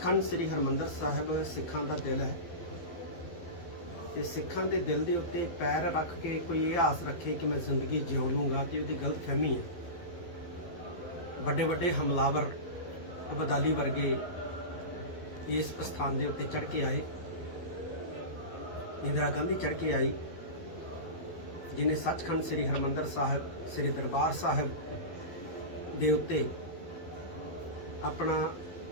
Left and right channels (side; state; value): right; late; 12 ms